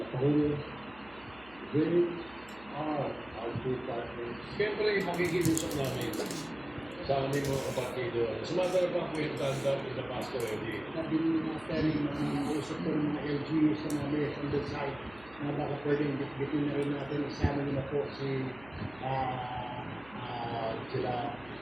Lapahulo. Great are our two partners. Siyempre, makikiusap namin sa aming mga kapatido. As a matter of fact, we've done that in the past already. Sabi ni Master, usap ko ng mga LGUs na namin on the side na baka pwedeng bitbitin na rin natin. Isama nila po si sila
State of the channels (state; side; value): noise; right; hum, 23 dB below the sound